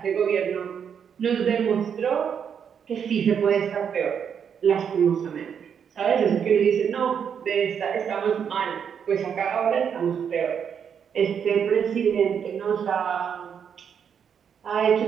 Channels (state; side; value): quieter; left; 7.6 dB